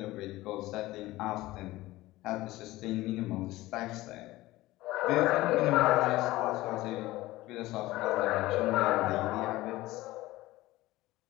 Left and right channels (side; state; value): right; quieter; 17.9 dB